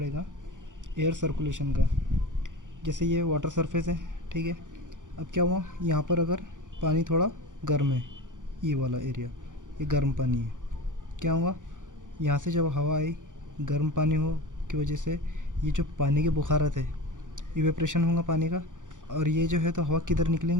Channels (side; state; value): left; late; 0.87 ms